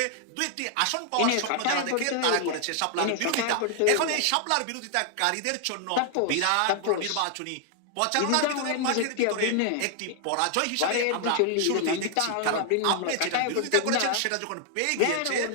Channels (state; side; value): different; both; correlation 0.00